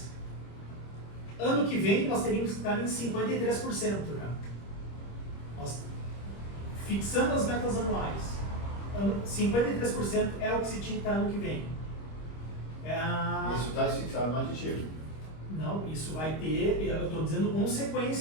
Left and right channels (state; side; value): late; right; 25 ms